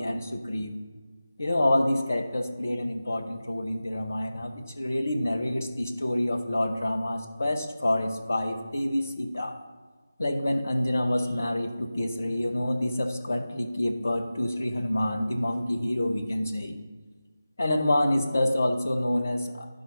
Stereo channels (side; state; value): both; inverted; correlation -0.95